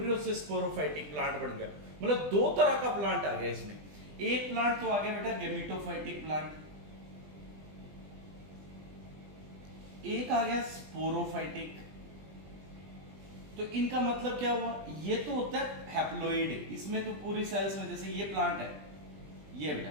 से स्पोरोफाइटिक प्लांट बन गया। मतलब दो तरह का प्लांट आ गया इसमें। एक प्लांट तो आ गया बेटा गैमीटोफाइटिक प्लांट, एक आ गया स्पोरोफाइटिक। तो इनका मतलब क्या हुआ, ये तो होता है हैप्लोइड, इसमें तो पूरी सेल्स में, जैसे ये प्लांट है, ये बेटा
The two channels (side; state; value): left; late; 20 ms